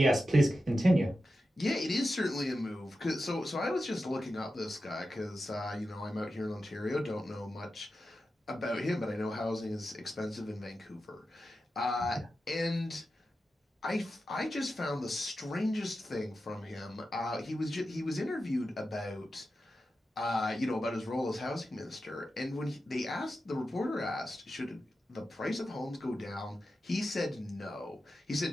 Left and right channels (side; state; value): both; normal; correlation 0.91